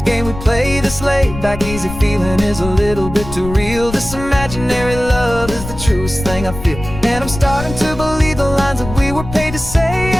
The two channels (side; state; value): left; noise; rumble, 10 dB below the sound